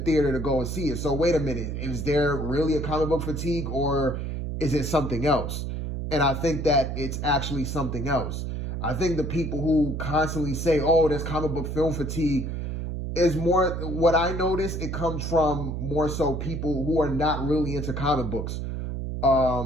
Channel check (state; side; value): noise; right; hum, 4 dB below the sound